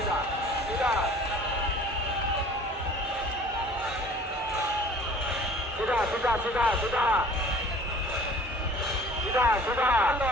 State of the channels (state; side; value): normal; both; correlation 0.49